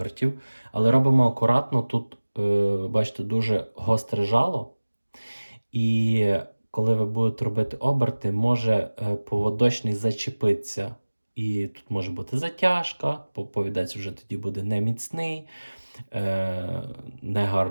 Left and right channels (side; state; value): both; inverted; correlation -1.00